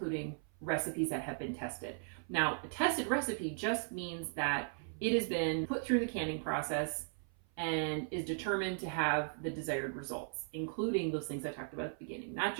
recipes that have been tested. Now, a tested recipe just means that it has been put through the canning process and is determined to have the desired results, including those things I talked about at the beginning. Not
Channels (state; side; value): silent; left; 53 dB below the other